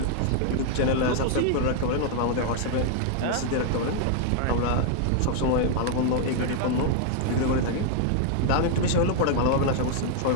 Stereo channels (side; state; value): both; different; correlation 0.00